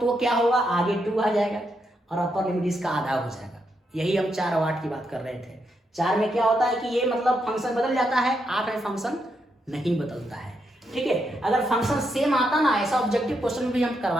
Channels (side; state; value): both; normal; correlation 0.80